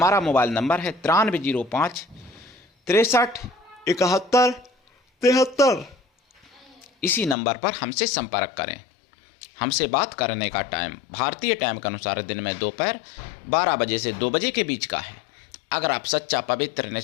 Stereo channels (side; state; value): right; drops out; at 7.4 s